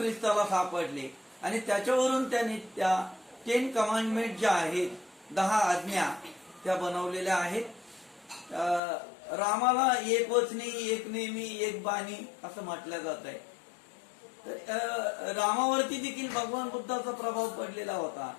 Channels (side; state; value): right; drops out; at 8.8 s